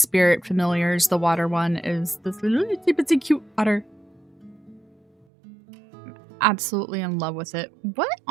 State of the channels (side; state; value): left; drops out; at 5.2 s